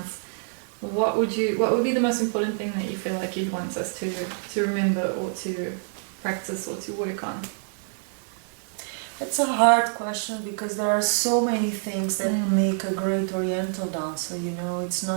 what would be the most important thing that you feel like you'd want us to remember or to practice or to work on? It's a hard question because there are so many things that make a great Oriental dancer, you know, it's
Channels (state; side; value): silent; left; 61 dB below the other